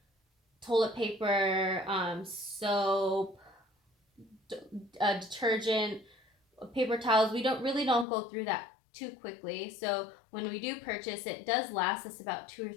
toilet paper, soap, detergent, paper towels. We really don't go through that too quickly. So when we do purchase, it does last us about 2 or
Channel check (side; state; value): right; drops out; at 8.1 s